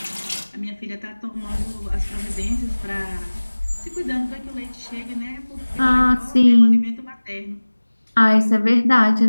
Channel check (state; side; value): inverted; both; correlation -1.00